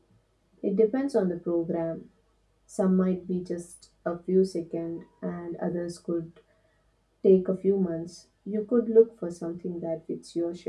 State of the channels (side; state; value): both; identical; correlation 1.00